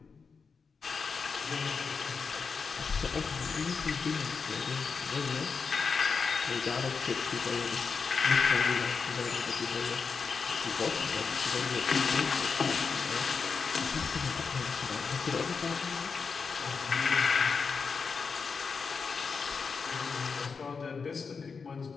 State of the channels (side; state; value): right; quieter; 5.3 dB